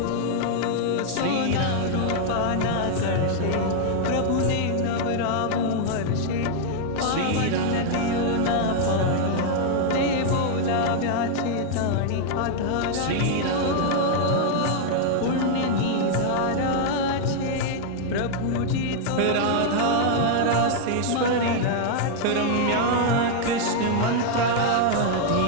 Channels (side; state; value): both; different; correlation 0.00